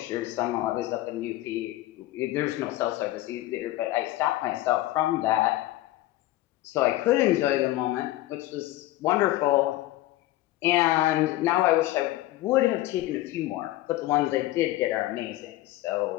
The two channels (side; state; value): right; quieter; 16.2 dB